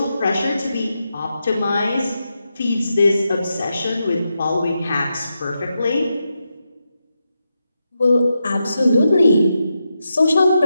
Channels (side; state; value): both; inverted; correlation -0.87